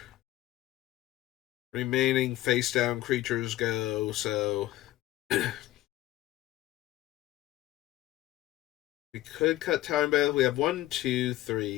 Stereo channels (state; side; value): quieter; right; 15.5 dB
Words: remaining face-down creatures go, so... we could cut Time Bath. We have 1, 2,